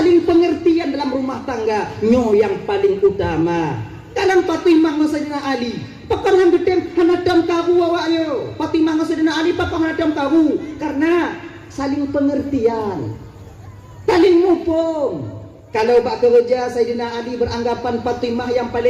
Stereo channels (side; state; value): both; identical; correlation 1.00